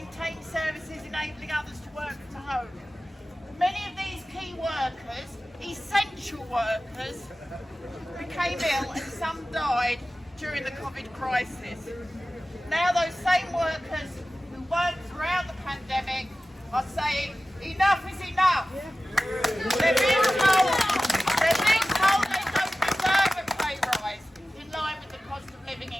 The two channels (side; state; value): both; normal; correlation 0.96